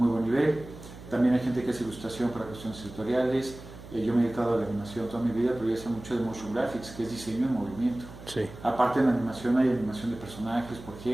buen nivel. También hay gente que hace ilustración para cuestiones editoriales. Yo me he dedicado a la animación toda mi vida, pero yo sé mucho de motion graphics, que es diseño en movimiento. Sí. Aparte en animación hay animación de personajes, por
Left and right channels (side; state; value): right; noise; hum, 15 dB below the sound